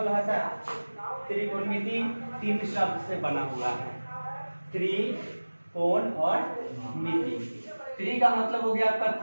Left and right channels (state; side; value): inverted; both; correlation -1.00